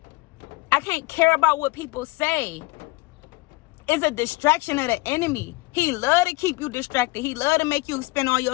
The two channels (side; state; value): right; quieter; 22.7 dB